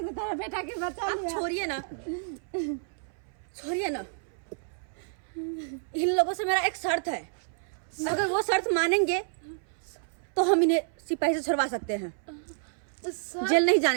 तेरा बेटा के बचा लिया। छोड़िए ना, छोड़िए ना, इन लोगों से मेरा एक शर्त है, अगर वो शर्त मानेंगे तो हम इन्हें सिपाही से छुड़वा सकते हैं, जेल नहीं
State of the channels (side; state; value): left; silent; 58 dB below the other